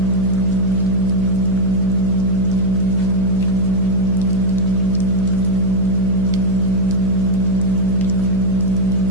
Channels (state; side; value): noise; right; hum, 5 dB below the sound